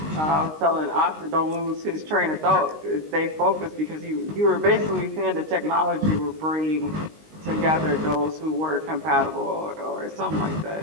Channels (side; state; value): left; late; 19 ms